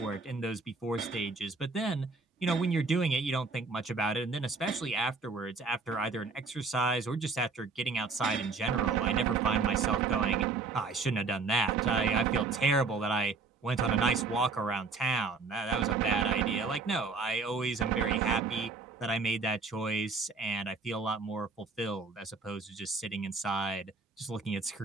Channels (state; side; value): quieter; left; 4.2 dB